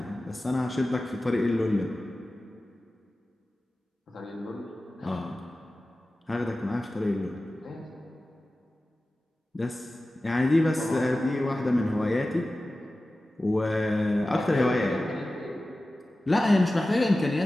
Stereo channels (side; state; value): both; normal; correlation 0.95